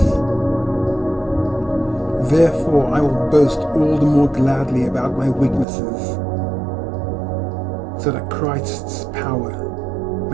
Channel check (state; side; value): drops out; left; at 5.7 s